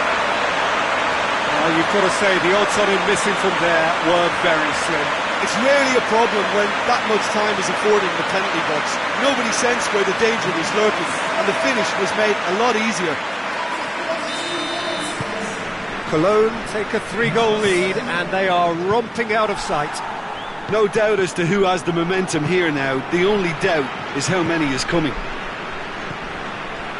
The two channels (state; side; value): identical; both; correlation 1.00